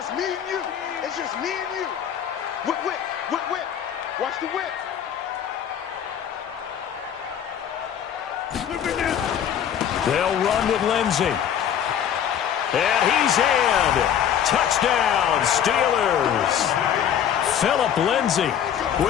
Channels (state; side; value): quieter; right; 9.2 dB